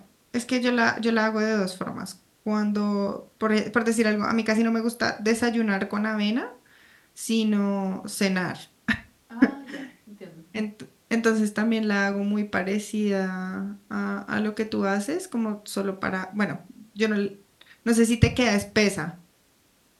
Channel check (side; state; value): both; identical; correlation 1.00